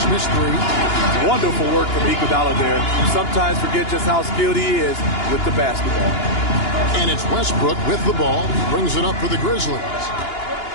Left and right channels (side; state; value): right; late; 2.9 ms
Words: missed 3. Wonderful work from Iguodala there. You sometimes forget just how skilled he is with the basketball. And it's Westbrook with the ball. Brings it up for the Grizzlies.